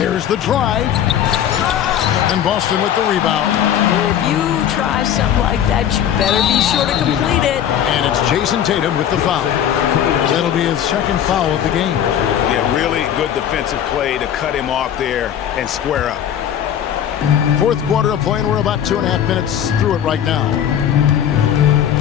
the drive. And Boston with the rebound. If you try something like that, you better be sure to complete it. And it's Jason Tatum with the foul. That'll be his second foul of the game. Yeah, really good defensive play to cut him off there and square up. Fourth quarter of play, and we're about 2.5 minutes through it right now.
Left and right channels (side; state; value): right; quieter; 9.9 dB